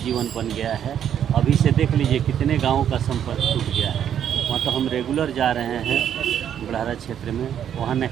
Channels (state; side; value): quieter; left; 9.4 dB